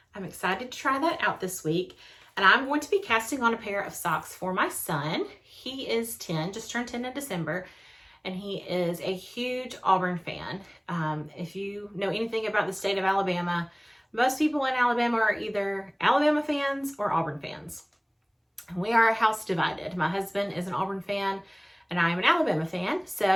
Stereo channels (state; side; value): identical; both; correlation 1.00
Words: I'm excited to try that out this week. And I'm going to be casting on a pair of socks for my son. He is 10, just turned 10 in December, and he is a huge Auburn fan. If you know anything about the state of Alabama, most people in Alabama are either Alabama fans or Auburn fans. And we are house divided. My husband is an Auburn fan, and I am an Alabama fan.